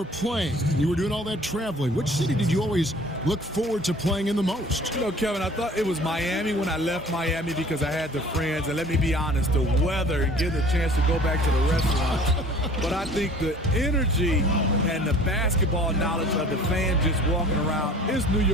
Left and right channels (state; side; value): normal; both; correlation 0.49